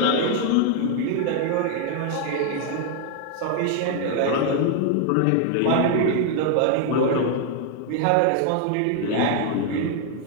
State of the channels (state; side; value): different; both; correlation 0.00